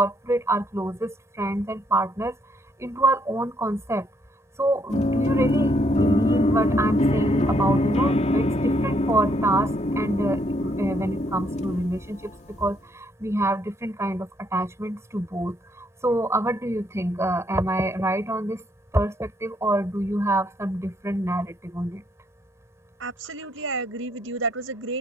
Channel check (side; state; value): both; normal; correlation 0.72